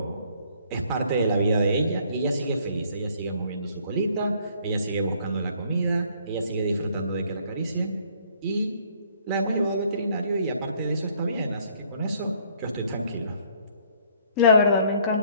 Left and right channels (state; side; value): inverted; both; correlation -0.62